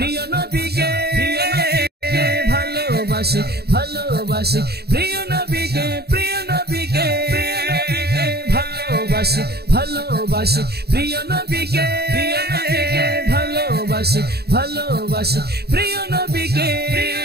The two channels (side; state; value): left; late; 0.47 ms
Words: নবীকে ভালোবাসি ভালোবাসি প্রিয় নবীকে প্রিয় নবীকে ভালোবাসি ভালোবাসি প্রিয় নবীকে ভালোবাসি ভালোবাসি প্রিয় নবীকে